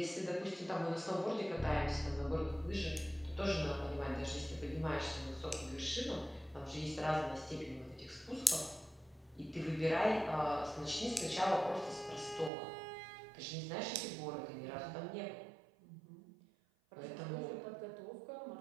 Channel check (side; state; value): left; drops out; at 12.5 s